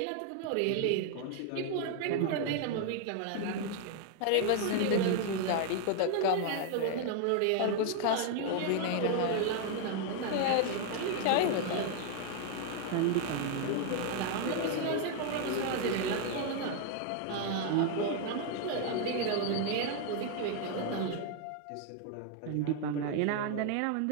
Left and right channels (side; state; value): both; different; correlation 0.00